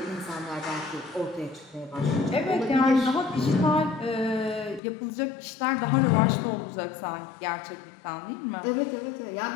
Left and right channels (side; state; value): right; drops out; at 4.8 s